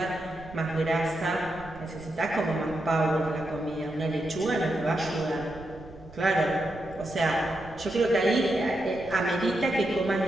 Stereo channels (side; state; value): right; noise; rumble, 19 dB below the sound